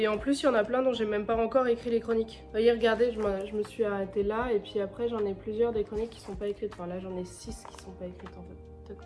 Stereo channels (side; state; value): both; identical; correlation 1.00